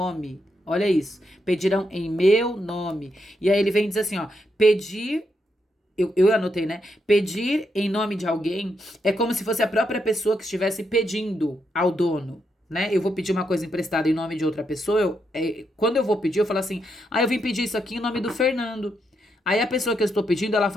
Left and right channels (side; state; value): both; normal; correlation 0.81